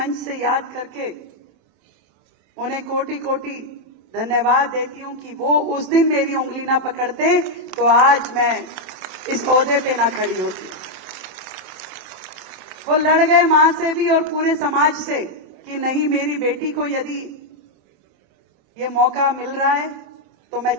से याद करके उन्हें कोटि कोटि धन्यवाद देती हूं कि वो उस दिन मेरी उंगली ना पकड़ते तो आज मैं इस ओहदे पे ना खड़ी होती। वो लड़ गए मां से भी और पूरे समाज से कि नहीं, मेरी बेटी को यदि ये मौका मिल रहा है तो मैं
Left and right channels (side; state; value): left; late; 27 ms